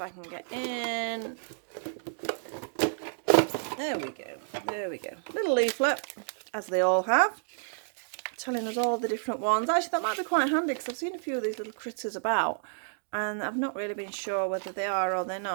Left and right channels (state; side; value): silent; left; digital silence